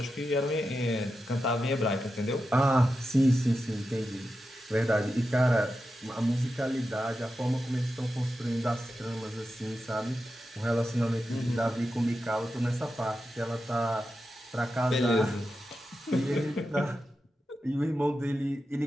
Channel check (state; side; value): normal; both; correlation 0.90